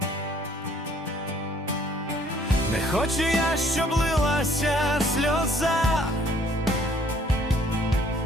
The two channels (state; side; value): normal; both; correlation 0.60